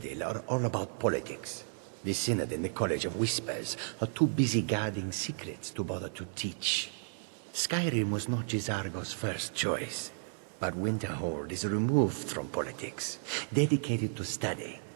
are all about politics. The Synod and the College of Whispers are too busy guarding secrets to bother to teach. Skyrim was not Gisargo's first choice, but Winterhold is removed from politics, dedicated to study.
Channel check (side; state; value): left; silent; digital silence